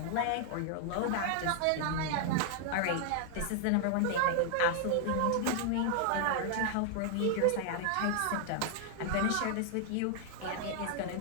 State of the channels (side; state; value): both; different; correlation 0.00